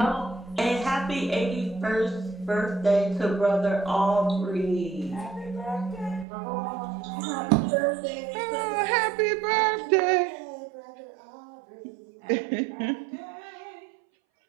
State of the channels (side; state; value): left; drops out; at 6.2 s